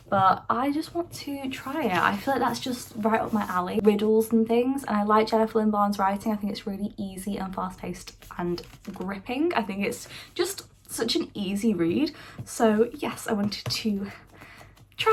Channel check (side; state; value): both; identical; correlation 1.00